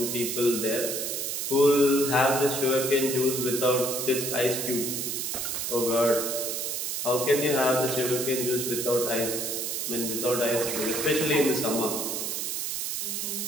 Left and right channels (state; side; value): noise; right; hiss, 2 dB below the sound